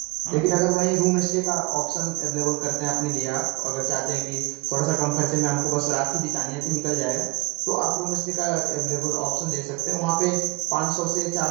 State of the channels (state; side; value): quieter; left; 24.1 dB